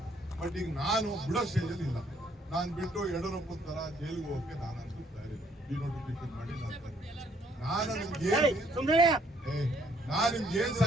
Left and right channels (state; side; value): normal; both; correlation 0.66